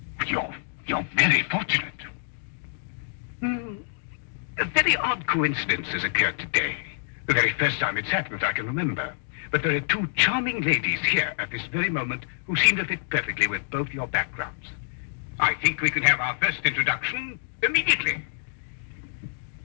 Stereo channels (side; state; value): right; silent; digital silence